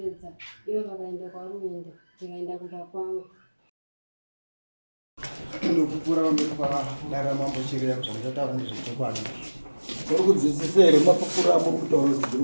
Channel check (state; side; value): inverted; both; correlation -1.00